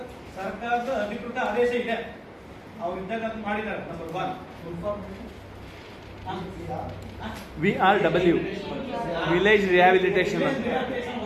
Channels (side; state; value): both; identical; correlation 1.00